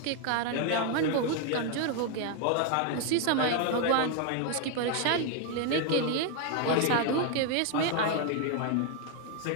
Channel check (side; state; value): both; different; correlation 0.01